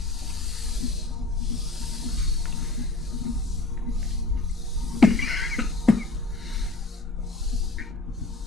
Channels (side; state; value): right; quieter; 3.2 dB